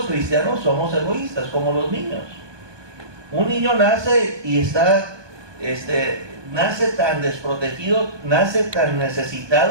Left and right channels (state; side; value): late; left; 1.2 ms